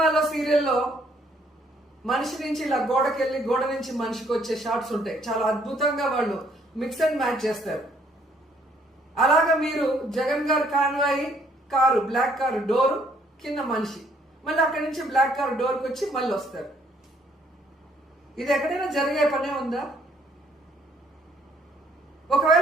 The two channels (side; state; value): both; normal; correlation 0.66